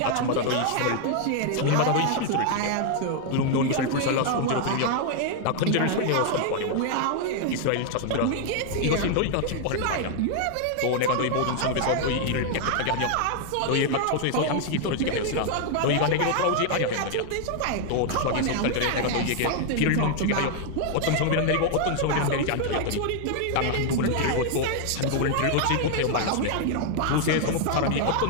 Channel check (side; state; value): both; different; correlation 0.00